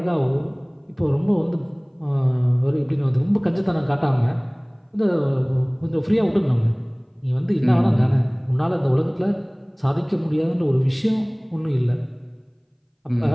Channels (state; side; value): identical; both; correlation 1.00